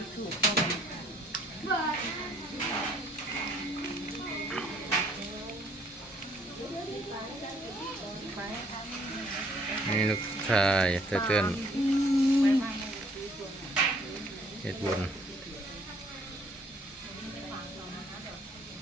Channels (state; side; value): normal; both; correlation 0.62